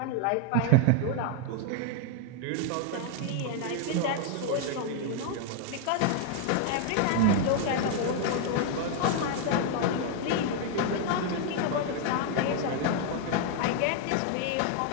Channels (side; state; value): both; different; correlation 0.00